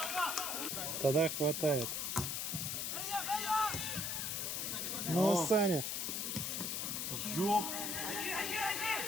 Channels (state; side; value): noise; left; hiss, 1 dB below the sound